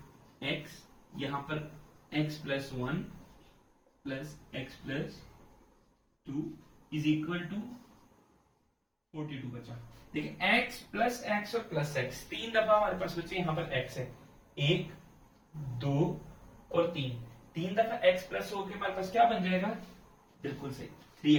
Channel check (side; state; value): both; identical; correlation 1.00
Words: x, यहाँ पर x plus 1 plus x plus 2 is equal to 42 बचा। देखिए x प्लस x और प्लस x तीन दफा हमारे पास बचे, यहाँ पर x है 1 2 और 3, तीन दफा x प्लस होके हमारे पास क्या बन जाएगा, बिल्कुल सही